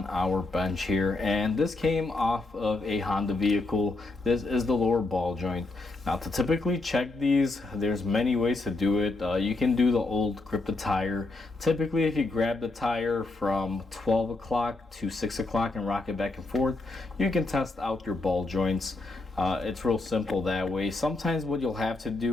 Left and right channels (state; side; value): quieter; right; 3.2 dB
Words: our bench here, and this came off of a Honda vehicle. This is the lower ball joint. Now to typically check these, there's many ways to do it. You can do the old grip the tire. Typically if you grab the tire from 12 o'clock to 6 o'clock and rock it back and forth, you can test out your ball joints. It's real simple that way. Sometimes what you'll have to